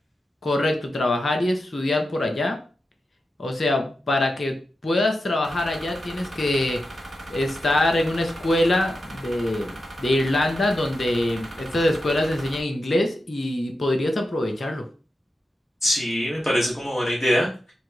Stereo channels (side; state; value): both; normal; correlation 0.90